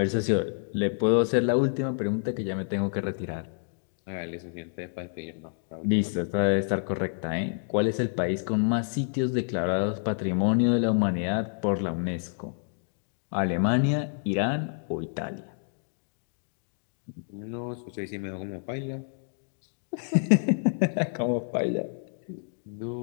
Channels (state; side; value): silent; right; digital silence